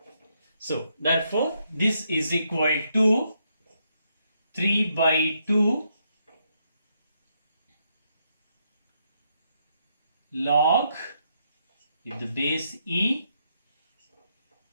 So therefore this is equal to 3 by 2 log with the base E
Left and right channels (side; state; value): both; inverted; correlation -0.77